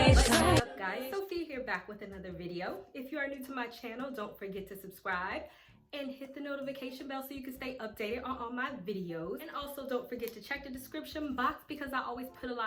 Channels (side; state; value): both; identical; correlation 1.00